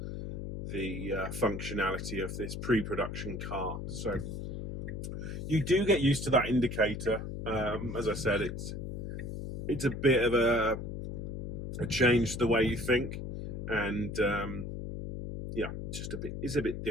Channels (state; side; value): noise; left; hum, 6 dB below the sound